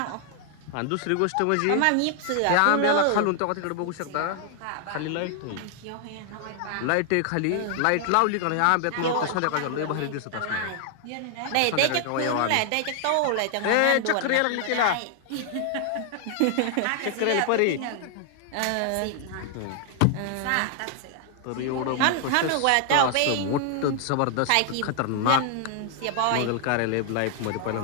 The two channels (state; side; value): different; both; correlation 0.00